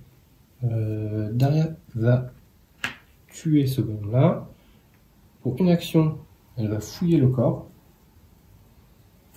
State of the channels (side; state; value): both; identical; correlation 1.00